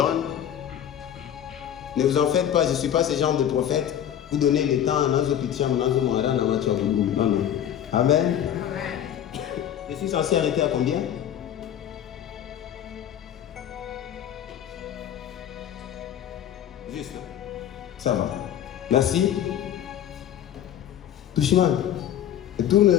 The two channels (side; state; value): right; quieter; 10.3 dB